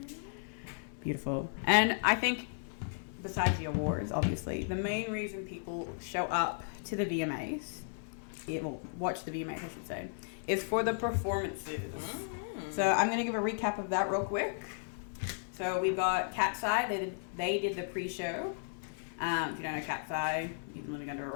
Beautiful. And I think, besides the awards, obviously, the main reason people show up to the VMAs, watch the VMAs, I should say, is for the performances. So I'm going to give a recap of that real quick. So we've got Cat's Eye. They did the pre-show. If you don't know Cat's Eye, you've been living under a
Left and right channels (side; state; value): right; silent; 55 dB below the other